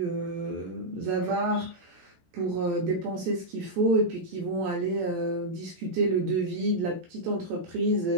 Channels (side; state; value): left; late; 14 ms